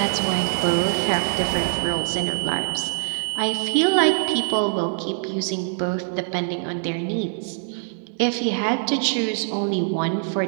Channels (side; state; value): left; silent; digital silence